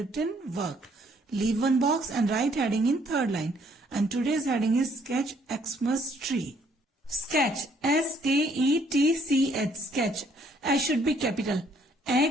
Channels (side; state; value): both; normal; correlation 0.65